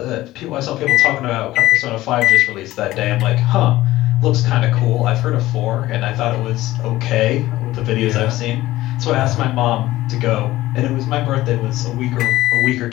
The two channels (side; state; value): right; quieter; 16.5 dB